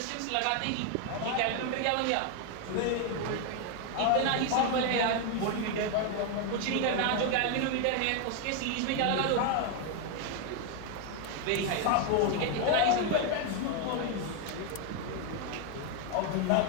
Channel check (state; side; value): different; both; correlation 0.01